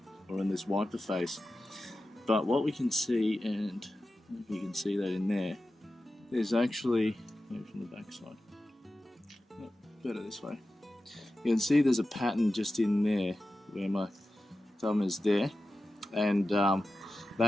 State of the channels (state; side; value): normal; both; correlation 0.93